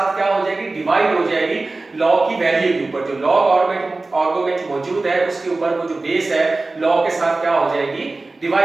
क्या हो जाएगी, डिवाइड हो जाएगी लॉग की वैल्यू के ऊपर। जो लॉग आर्गुमेंट मौजूद है उसके ऊपर वो जो बेस है लॉग के साथ क्या हो जाएगी,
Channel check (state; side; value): quieter; left; 3.3 dB